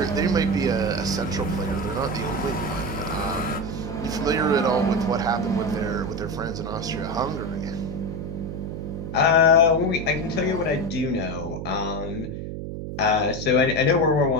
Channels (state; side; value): noise; right; hum, 6 dB below the sound